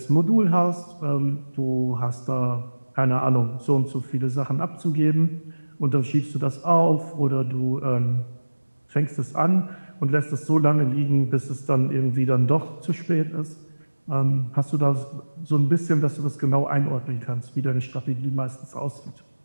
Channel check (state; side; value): inverted; both; correlation -1.00